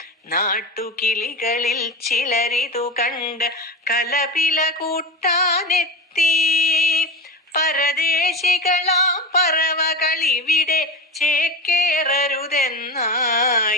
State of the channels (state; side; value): normal; both; correlation 0.24